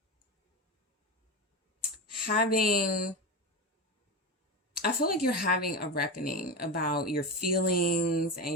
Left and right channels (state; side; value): normal; both; correlation 0.19